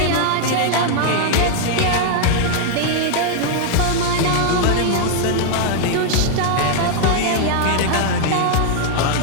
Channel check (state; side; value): different; both; correlation 0.00